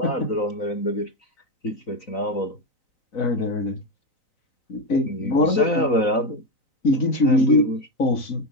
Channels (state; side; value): late; right; 4.0 ms